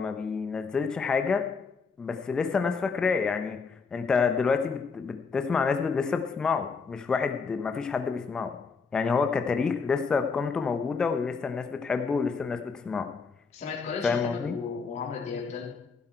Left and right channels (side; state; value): right; quieter; 5.0 dB